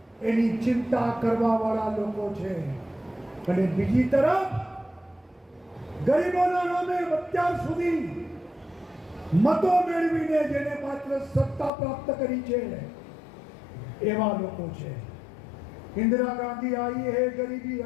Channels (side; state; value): right; drops out; at 11.7 s